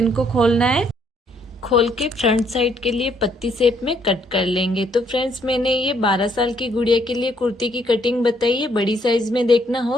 को खोलना है। खोल के फ्रंट साइड के लिए पत्ती शेप में कट कर लेंगे। तो फ्रेंड्स, मैंने ये 12 साल की गुड़िया के लिए कुर्ती की कटिंग बताई है। बड़ी साइज में देखना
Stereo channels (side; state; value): both; normal; correlation 0.69